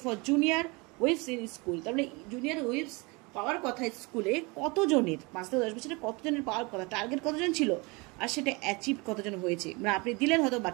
for junior উইপস ইন স্কুল, তার মানে জুনিয়র উইপস পাওয়ার কথা স্কুলে কতজনের, 5 থেকে 10 বছরে কতজনের পাওয়ার কথা, টার্গেট কতজন ছিল, আর সেটা অ্যাচিভ কতজন হয়েছে। মানে আপনি দিলেন, হয়তো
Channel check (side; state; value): left; quieter; 27.2 dB